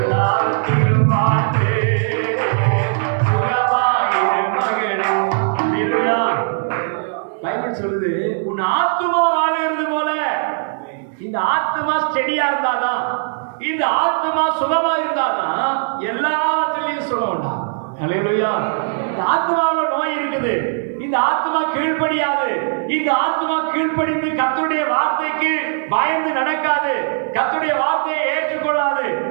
வாழ்ந்து சுகமாயிரு மகனே. பைபிள் சொல்லுது, உன் ஆத்மா வாழுகிறது போல. இந்த ஆத்மா ஸ்டெடியா இருந்தாதான், இந்த ஆத்மா சுகமா இருந்தாதான் எல்லாவற்றிலையும் சுகம் உண்டா. அல்லேலூயா. இந்த ஆத்மாவில் நோய் இருக்குது. இந்த ஆத்மா கீழ்ப்படியாது. இந்த ஆத்மா கீழ்ப்படிந்து கர்த்தருடைய வார்த்தைக்கு பயந்து நடக்காது, கர்த்தருடைய வார்த்தையை ஏற்றுக்கொள்ளாது.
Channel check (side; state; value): left; silent; digital silence